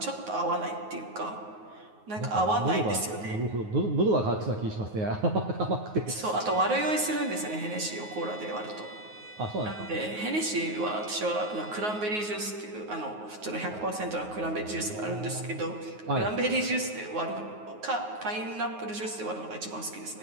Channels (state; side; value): late; left; 9.5 ms